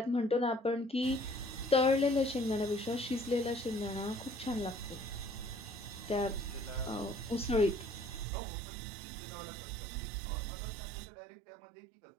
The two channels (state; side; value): drops out; left; at 8.2 s